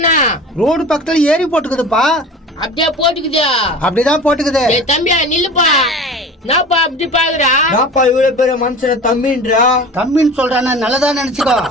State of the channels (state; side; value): normal; both; correlation 0.37